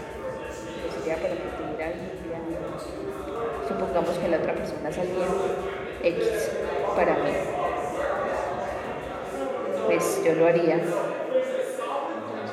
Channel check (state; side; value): identical; both; correlation 1.00